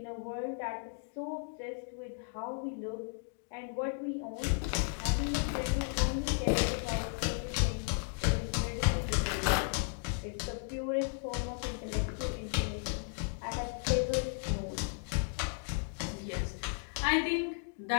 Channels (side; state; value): right; silent; 55 dB below the other